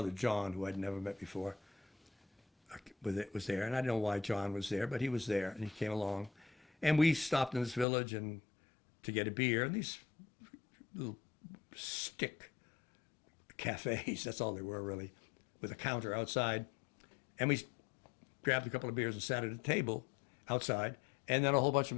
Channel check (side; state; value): right; drops out; at 7.9 s